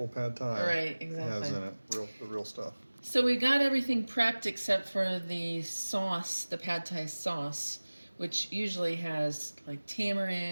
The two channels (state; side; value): inverted; both; correlation -1.00